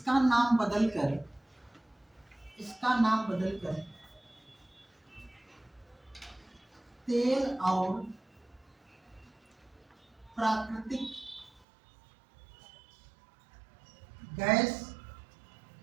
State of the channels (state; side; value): drops out; left; at 11.6 s